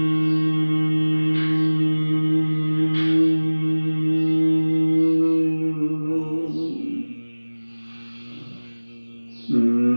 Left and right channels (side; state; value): both; inverted; correlation -1.00